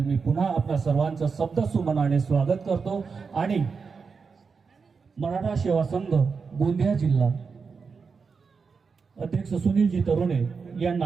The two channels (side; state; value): left; quieter; 5.2 dB